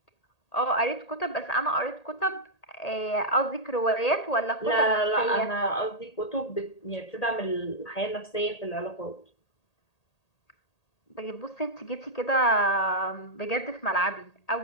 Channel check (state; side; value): late; right; 1.8 ms